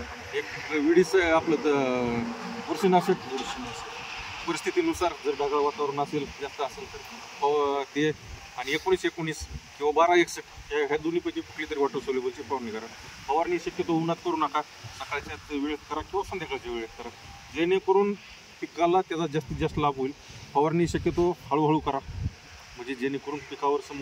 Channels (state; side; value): identical; both; correlation 1.00